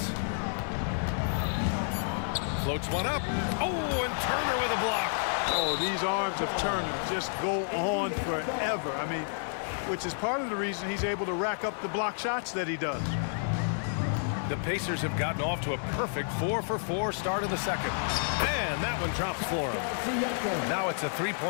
Floats one up. Oh, and Turner with a block. Oh, these arms of Turner just go on forever. I mean, which is part of the reason he's able to rack up the block shots that he does. The Pacers have gotten off to a perfect 4-for-4 start in the second. And that one drops for him. Now it's a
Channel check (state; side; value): silent; right; 58 dB below the other